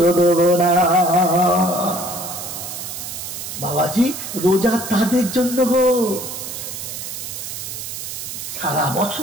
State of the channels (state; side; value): noise; right; hiss, 8 dB below the sound